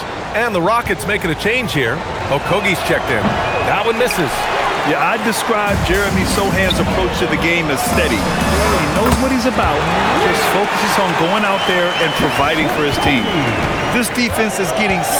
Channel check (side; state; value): both; identical; correlation 1.00